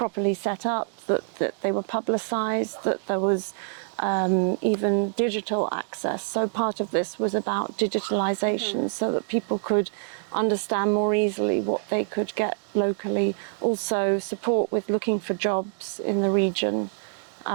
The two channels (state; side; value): silent; left; digital silence